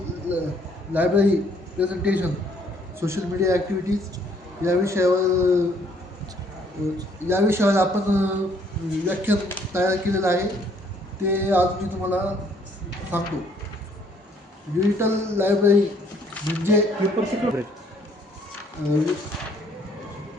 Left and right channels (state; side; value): normal; both; correlation 0.63